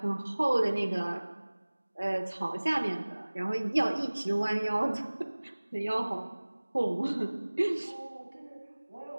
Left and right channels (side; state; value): both; inverted; correlation -1.00